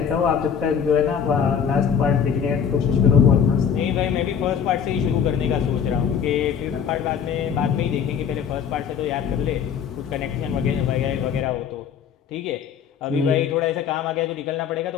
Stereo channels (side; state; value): right; quieter; 7.6 dB